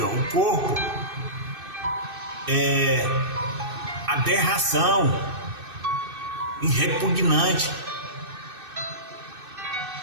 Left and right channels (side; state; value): left; late; 2.6 ms